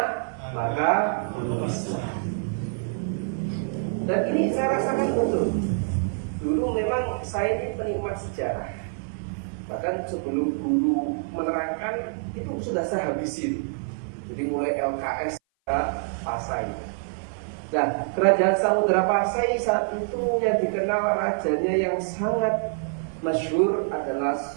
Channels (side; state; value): left; silent; 56 dB below the other